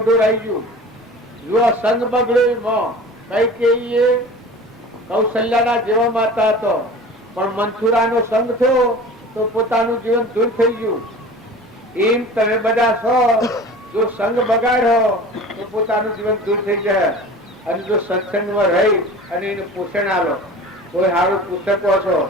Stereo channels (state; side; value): normal; both; correlation 0.39